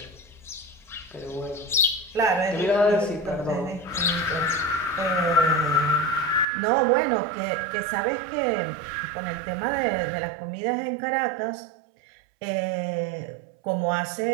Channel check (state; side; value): drops out; left; at 6.5 s